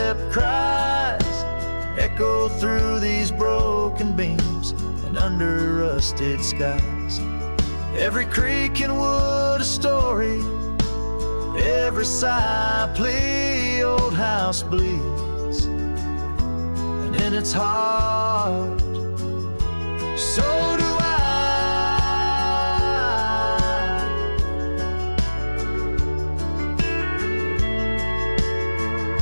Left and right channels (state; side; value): inverted; both; correlation -1.00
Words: cries echo through these broken beams and under rusted skies. Every creak in wood a story, every sigh a plea. Old house bleeds, and in its heart, so do I.